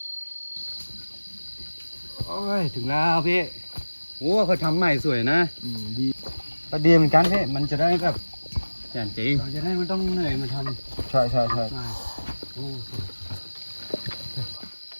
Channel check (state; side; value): inverted; both; correlation -1.00